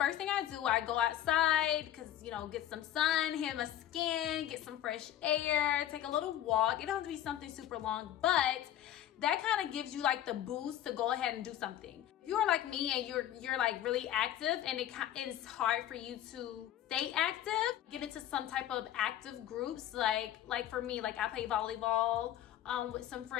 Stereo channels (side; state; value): right; quieter; 11.9 dB